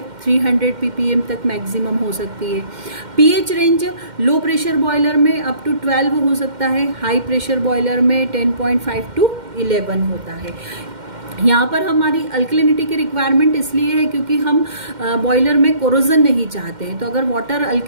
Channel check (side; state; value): left; late; 2.1 ms